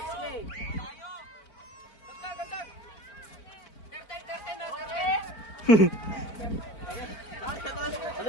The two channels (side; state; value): right; late; 4.5 ms